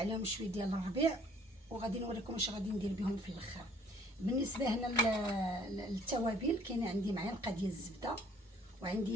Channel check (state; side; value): normal; both; correlation 0.58